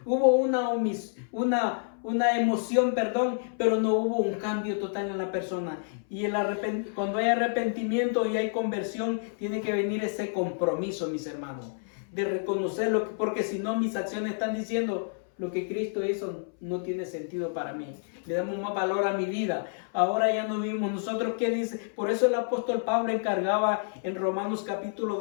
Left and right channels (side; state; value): right; silent; 59 dB below the other